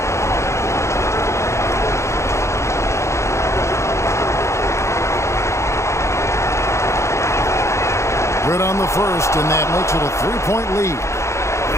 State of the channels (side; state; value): right; late; 0.14 ms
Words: Good on the first, and that makes it a 3-point lead.